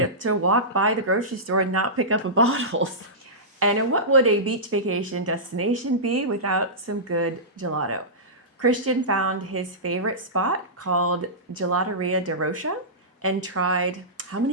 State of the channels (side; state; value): both; normal; correlation -0.17